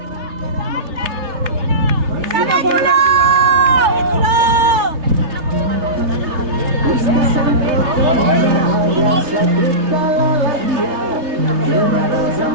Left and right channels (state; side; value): late; left; 3.1 ms